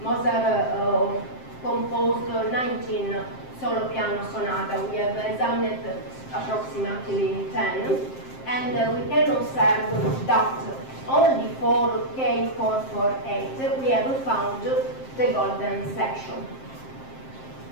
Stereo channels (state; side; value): late; right; 7.6 ms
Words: Mozart composed 19 solo piano sonata. We have examined approximately 10, and we can observe that only for K448 we have found the golden section.